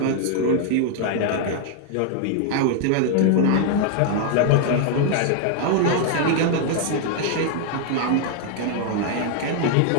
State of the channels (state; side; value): different; both; correlation 0.00